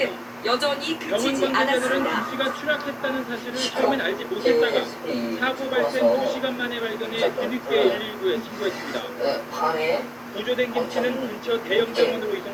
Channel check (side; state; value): both; identical; correlation 1.00